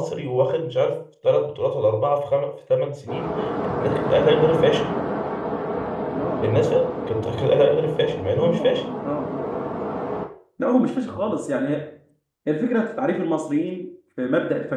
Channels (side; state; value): both; identical; correlation 1.00